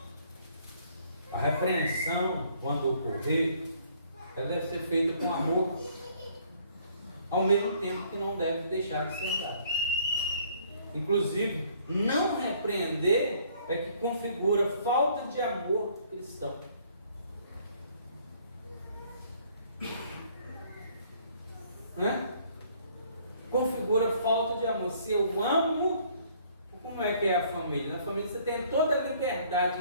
A repreensão, quando ocorrer, ela deve ser feita com amor, ao mesmo tempo que não deve deixar de ser dada. Inclusive, não repreender é que configura falta de amor cristão. Né? Configura falta de amor. Se eu amo, como é que é a família? Na família você tem toda a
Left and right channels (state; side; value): inverted; both; correlation -0.61